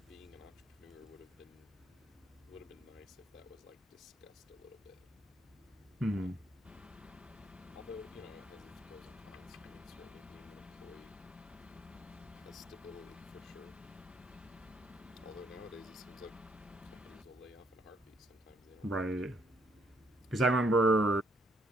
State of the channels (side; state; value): both; normal; correlation 0.70